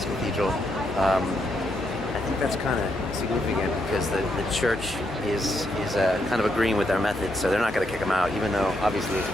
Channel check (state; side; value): normal; both; correlation 0.79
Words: Cathedral. I think that's kind of significant because the church is kind of agreeing with our methods, so they're not going to kick them out, even though obviously it's